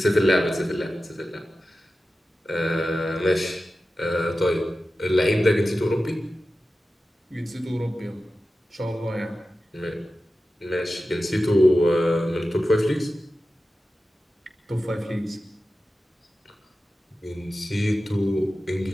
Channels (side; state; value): both; normal; correlation 0.94